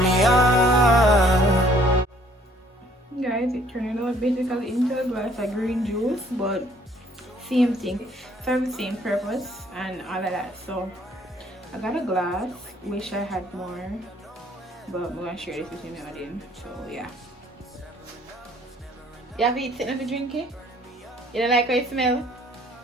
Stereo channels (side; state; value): both; normal; correlation 0.60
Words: Guys, it turned out basically into a glass of green juice, but same thing, serve the same purpose and all of that. So I got a glass, wish I had more, but I'm gonna share this with you now then. So yeah. You have it sitting to drink it? You don't like how it smells?